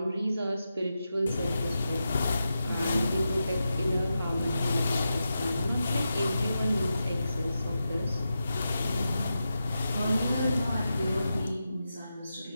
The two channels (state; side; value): inverted; both; correlation -0.90